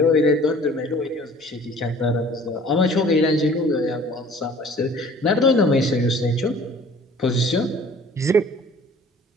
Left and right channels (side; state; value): both; normal; correlation 0.50